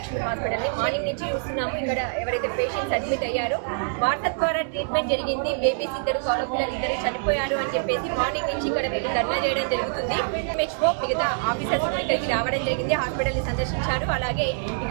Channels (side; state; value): left; silent; 62 dB below the other